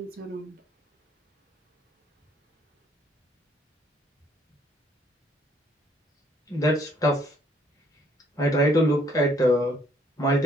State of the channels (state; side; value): normal; both; correlation 0.65